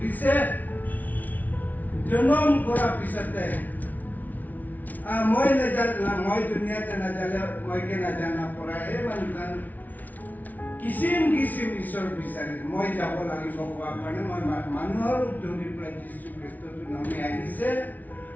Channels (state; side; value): late; right; 0.078 ms